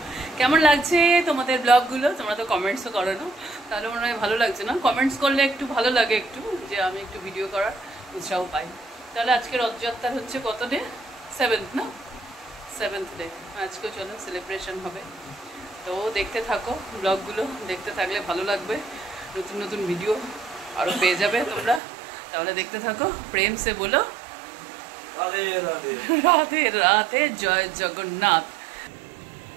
কেমন লাগছে তোমাদের ব্লগগুলো? তোমরা তো কমেন্টসও করো না, তাহলে মনে হয় ভালো লাগছে না? কমেন্টস করলে একটু ভালো লাগে, একটু যে আমি একটু ভিডিও করার উৎসাহ পাই। তাহলে আজকে রথযাত্রার হচ্ছে কত ডে? 7th না? 7th day. আজকেও চলো সেলিব্রেশন হবে, তো দেখতে থাকো ব্লগগুলো। দেখতে থাকলে ভালো লাগবে, নতুন নতুন ভিডিও আরও পেয়ে যাবে তোমরা। তাহলে দেখতে থাকো। প্রেম সে বলো রাধে রাধে রাধে রাধে, জয় জগন্নাথ।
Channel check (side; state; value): left; drops out; at 21.8 s